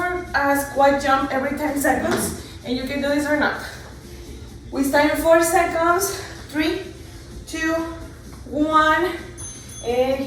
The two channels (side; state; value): both; identical; correlation 1.00